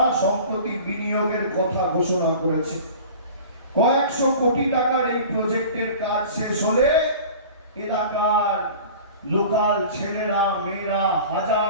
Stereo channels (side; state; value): both; inverted; correlation -0.40